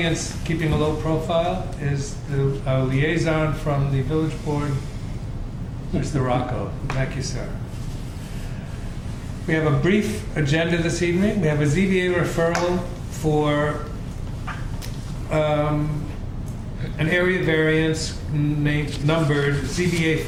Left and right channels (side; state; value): both; identical; correlation 1.00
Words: keeping a low profile, is the liaison from the village board, Mr. Rocco. Thank you, sir. We have a brief agenda this evening. We have a ZBA referral for an area variance numbered ZBA